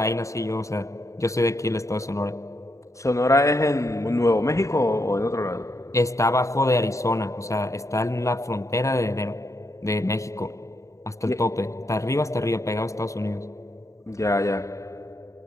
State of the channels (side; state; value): right; late; 0.15 ms